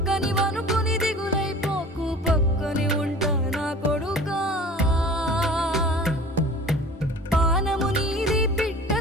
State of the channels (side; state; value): both; normal; correlation 0.42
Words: వనుకుని దిగులైపోకు, పక్కని ఉంటా నా కొడుకా. పానము నీది